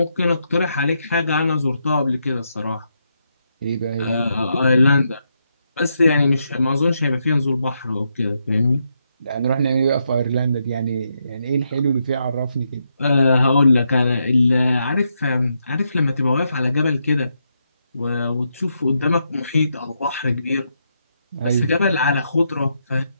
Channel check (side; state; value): both; inverted; correlation -0.81